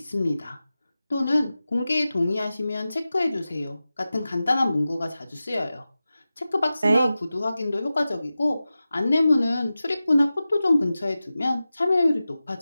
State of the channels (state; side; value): inverted; both; correlation -0.95